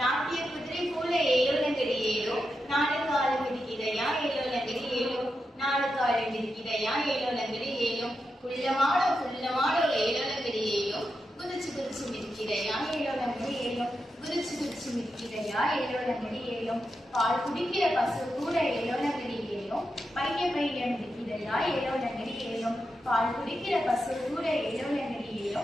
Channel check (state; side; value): normal; both; correlation 0.88